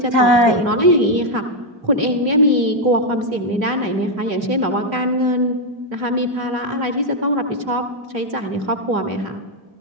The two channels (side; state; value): left; late; 3.3 ms